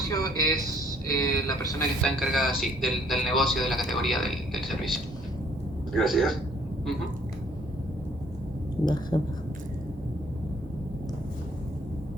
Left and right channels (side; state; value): both; normal; correlation 0.62